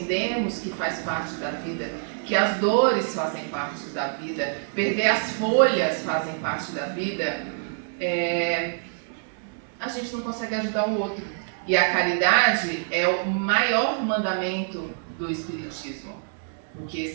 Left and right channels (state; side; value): silent; left; 61 dB below the other